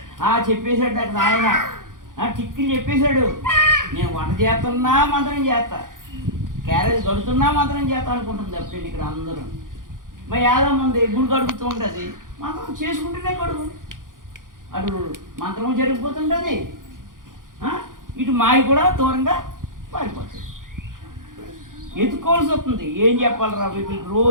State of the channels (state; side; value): late; left; 0.89 ms